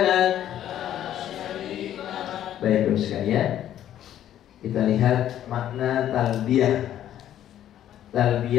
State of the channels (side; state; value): right; quieter; 11.4 dB